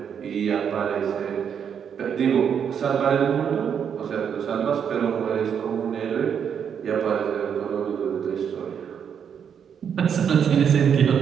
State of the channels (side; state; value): left; quieter; 7.7 dB